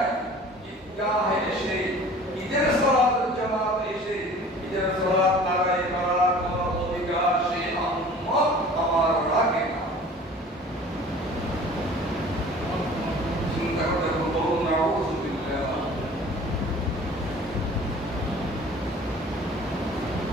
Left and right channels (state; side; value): normal; both; correlation 0.46